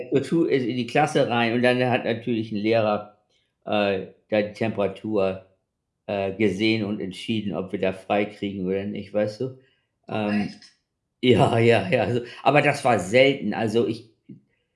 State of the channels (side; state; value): both; identical; correlation 1.00